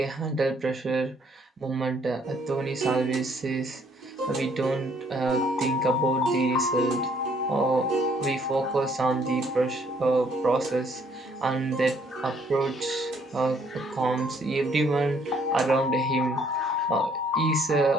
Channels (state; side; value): normal; both; correlation 0.65